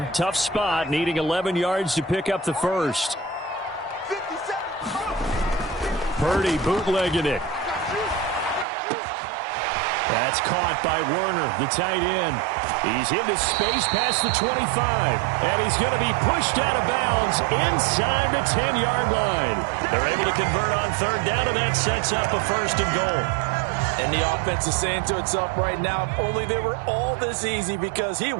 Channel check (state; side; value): drops out; left; at 8.7 s